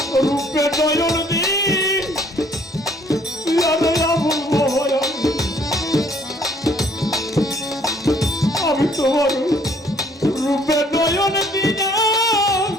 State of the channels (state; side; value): normal; both; correlation 0.61